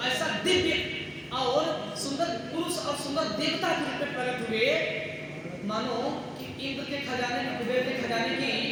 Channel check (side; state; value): both; identical; correlation 1.00